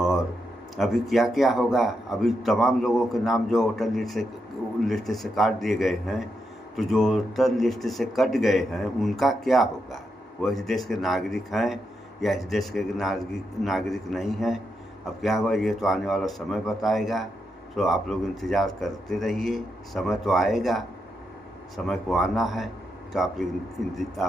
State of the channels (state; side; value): normal; both; correlation 0.83